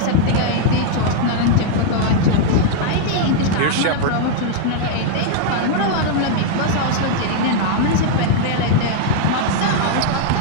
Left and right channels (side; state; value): both; different; correlation 0.00